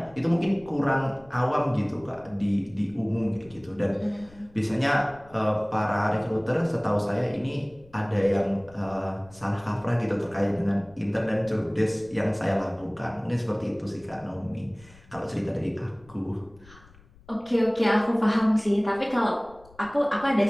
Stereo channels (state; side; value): noise; left; rumble, 25 dB below the sound